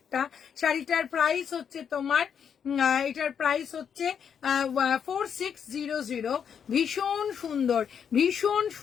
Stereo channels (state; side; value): quieter; right; 7.6 dB